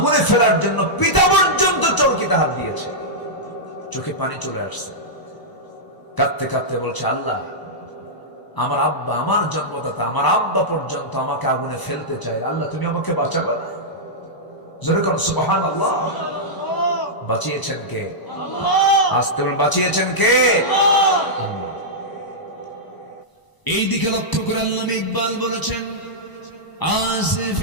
ফেলার জন্য পিতা পর্যন্ত চরকিতে হাত দিয়েছে। চোখে পানি চলে আসছে, কাঁদতে কাঁদতে বলছে, আল্লাহ, আমার আব্বা, আমার জন্মদাতা, আমার আব্বা পর্যন্ত আমাকে আগুনে ফেলতে চায়, আল্লাহ তুমি আমাকে বাঁচাবে না? যেরকম সুবহানাল্লাহ। বাঁচিয়েছেন কে? আসতে বলেন, বাঁচিয়েছেন কে? এই দিকে লক্ষ্য করে আল্লামা ইকবাল বলেছেন,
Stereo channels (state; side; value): late; right; 1.0 ms